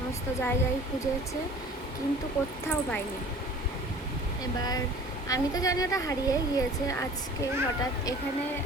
জায়গায় খুঁজেছে, কিন্তু কোথাও পাইনি। এবার আমি তো জানি ওটা হারিয়ে গিয়েছে। আজকে হঠাৎ এখানে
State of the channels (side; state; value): both; normal; correlation 0.46